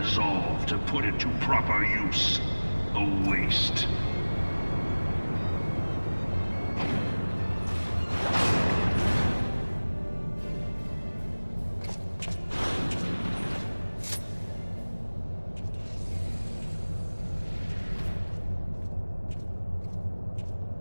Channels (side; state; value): both; inverted; correlation -1.00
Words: to put it to proper use. A waste.